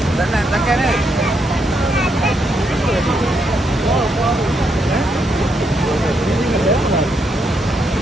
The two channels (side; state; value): both; normal; correlation 0.78